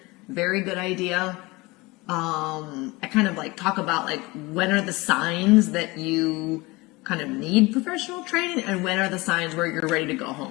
Very good idea. I kind of like talk about like when are the signs that you kind of need professional training and when are the signs where you're ready to go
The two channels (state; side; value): quieter; right; 23.0 dB